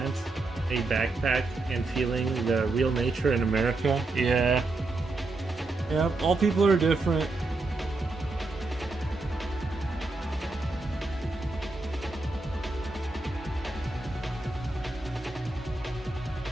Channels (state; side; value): quieter; left; 3.2 dB